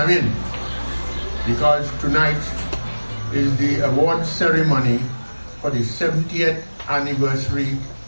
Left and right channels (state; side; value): inverted; both; correlation -1.00